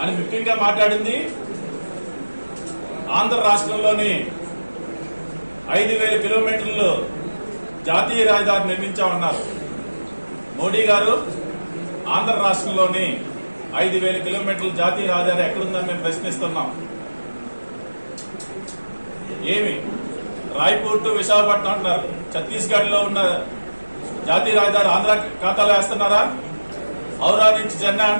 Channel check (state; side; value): inverted; both; correlation -1.00